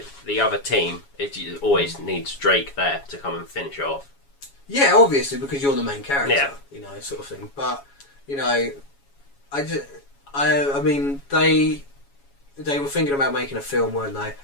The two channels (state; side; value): late; right; 7.2 ms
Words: the other team. It always needs Drake there to come and finish it off. Yeah, obviously, because you're the main character. Yeah. You know, sort of thing. But you know, I mean, they were thinking about making a film, weren't they?